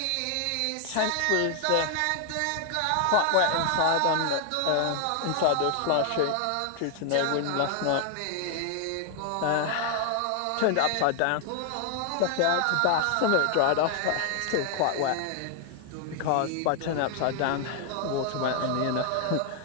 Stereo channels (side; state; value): both; different; correlation 0.00